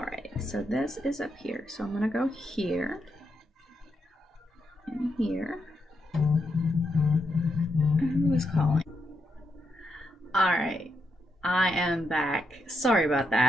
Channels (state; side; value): normal; both; correlation 0.82